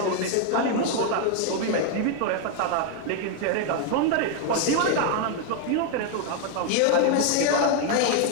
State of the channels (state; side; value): different; both; correlation 0.01